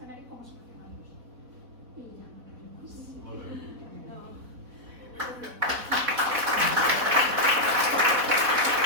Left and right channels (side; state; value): left; late; 4.1 ms